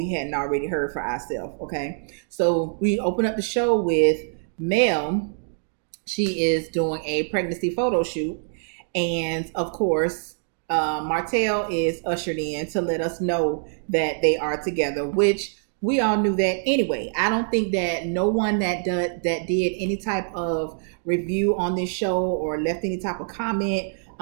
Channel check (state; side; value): silent; left; digital silence